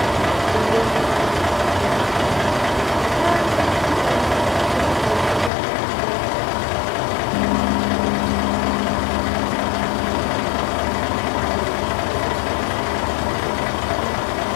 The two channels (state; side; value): drops out; right; at 5.5 s